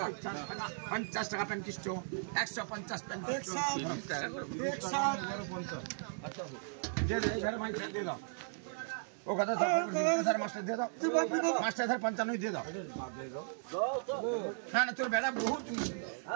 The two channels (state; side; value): silent; left; digital silence